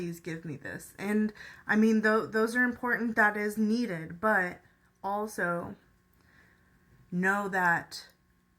give me this. And I mean, those are important. That is needed. But also know that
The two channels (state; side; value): identical; both; correlation 1.00